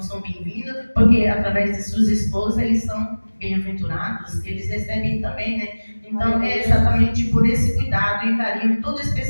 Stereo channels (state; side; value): inverted; both; correlation -1.00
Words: são bem-vindos, porque através de suas esposas eles são bem-aventurados, eles recebem também, né? Então é exatamente por esse cuidado e carinho todo